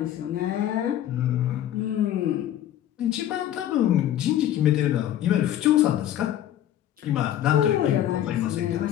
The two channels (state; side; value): quieter; right; 11.7 dB